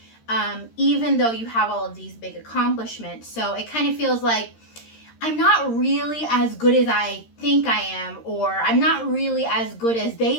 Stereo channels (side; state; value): right; late; 13 ms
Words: Even though you have all of these big accomplishments. So it kind of feels like I'm not really as good as I think I am, or I'm not really as good as